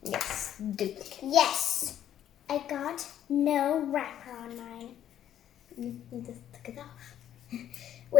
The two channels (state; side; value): quieter; right; 10.9 dB